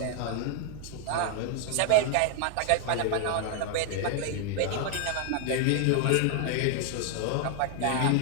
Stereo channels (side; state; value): both; different; correlation 0.00